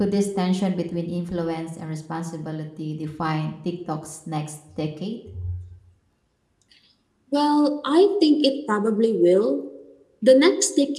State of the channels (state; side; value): identical; both; correlation 1.00